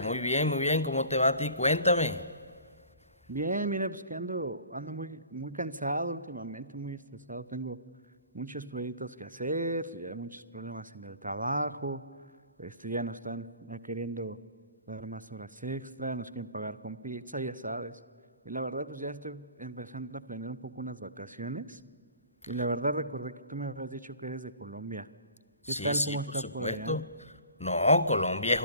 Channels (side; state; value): both; inverted; correlation -0.45